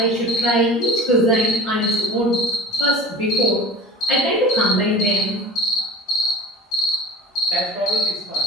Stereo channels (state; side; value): normal; both; correlation 0.37